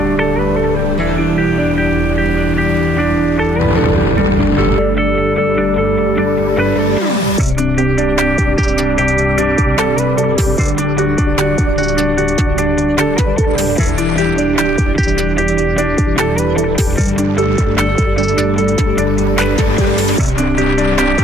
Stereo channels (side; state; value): both; normal; correlation 0.69